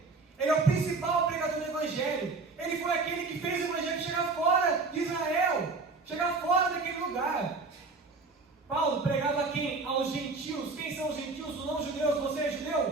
Ele é o principal pregador do Evangelho. Ele foi aquele que fez o Evangelho chegar fora de Israel, chegar fora daquele lugar. Paulo pregava a quem? Aos gentios. Quem são os gentios? Os não-judeus. Você é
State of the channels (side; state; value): left; quieter; 3.9 dB